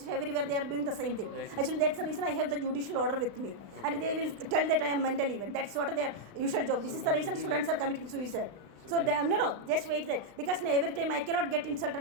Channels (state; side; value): late; left; 35 ms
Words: everywhere they are doing the same thing. Actually, that's the reason I have the judicial order with me. And they will tell that I am mentally even. That's what their usual job. This is the reason students are committing suicide. So, no, just wait there. Because every time I cannot get